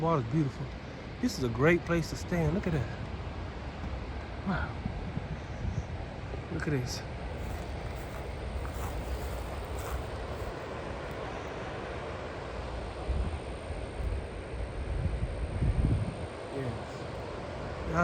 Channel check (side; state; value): both; identical; correlation 1.00